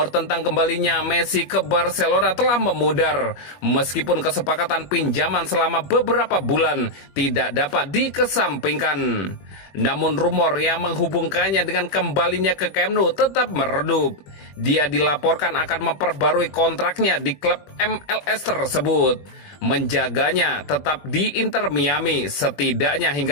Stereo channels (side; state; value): right; late; 21 ms